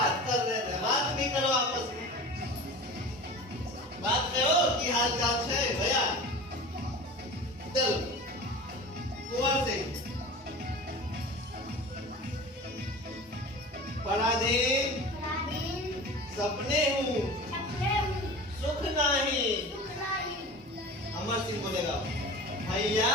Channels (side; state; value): both; normal; correlation 0.35